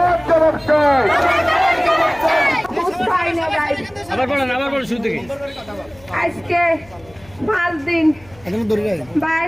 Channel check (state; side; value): noise; left; hum, 25 dB below the sound